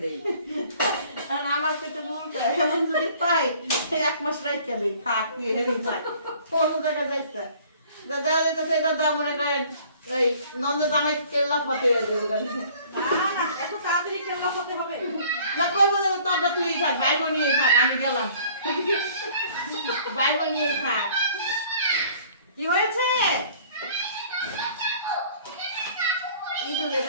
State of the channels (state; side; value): inverted; both; correlation -0.53